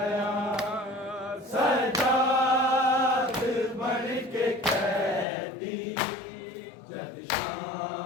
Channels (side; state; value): right; drops out; at 5.2 s